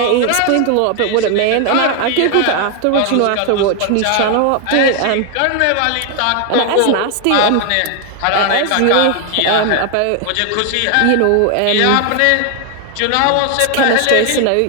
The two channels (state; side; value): different; both; correlation 0.00